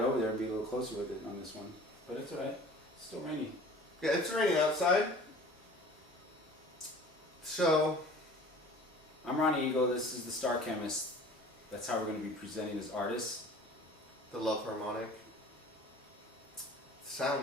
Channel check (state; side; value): normal; both; correlation 0.45